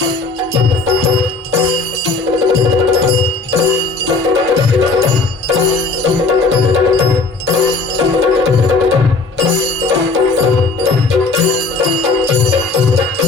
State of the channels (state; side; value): quieter; right; 4.0 dB